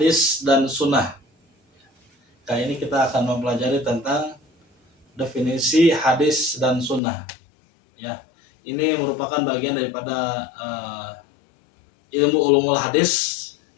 dan sunnah. Kali ini kita akan mempelajari tentang definisi hadis dan sunnah. Ya, ini merupakan bagian daripada ilmu ulumul hadis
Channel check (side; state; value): right; drops out; at 7.0 s